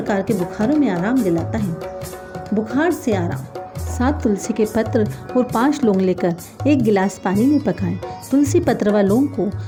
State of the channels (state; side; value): identical; both; correlation 1.00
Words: के बुखारों में आराम दिलाता है। बुखार से आराम। 7 तुलसी के पत्र और 5 लौंग लेकर 1 गिलास पानी में पकाएं। तुलसी पत्र व लौंग को